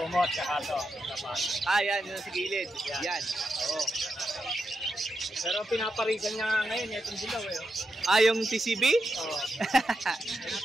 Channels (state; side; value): normal; both; correlation 0.86